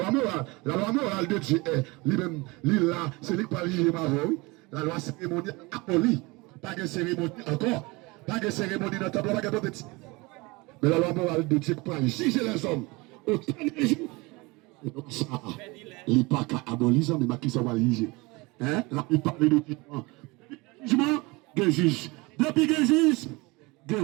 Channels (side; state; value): left; quieter; 24.5 dB